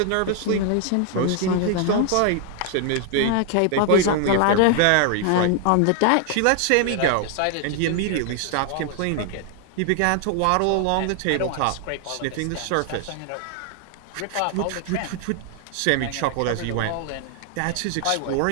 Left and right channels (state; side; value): different; both; correlation 0.00